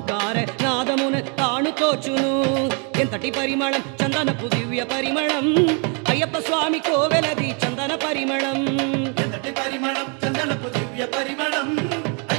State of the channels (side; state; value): left; quieter; 36.3 dB